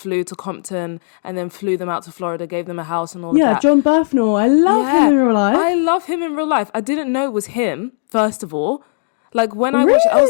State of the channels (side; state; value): right; silent; digital silence